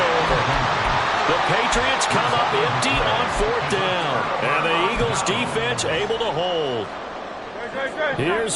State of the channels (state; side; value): identical; both; correlation 1.00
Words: over. The Patriots come up empty on 4th down. And the Eagles defense able to hold. Here's